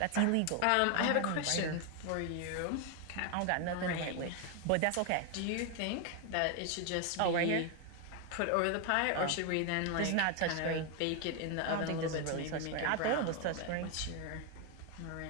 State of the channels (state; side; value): different; both; correlation 0.01